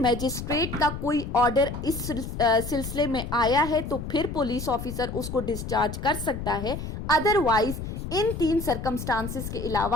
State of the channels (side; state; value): left; noise; rumble, 7 dB below the sound